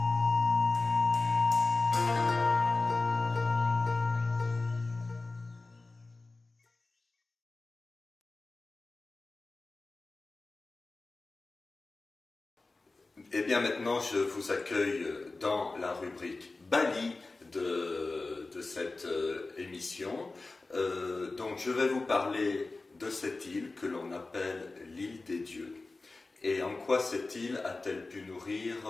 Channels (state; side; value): quieter; right; 3.4 dB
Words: bien maintenant je vous accueille dans la rubrique Bali de cette émission. Donc je vais vous parler de cette île que l'on appelle l'île des dieux. Et en quoi cette île a-t-elle pu nourrir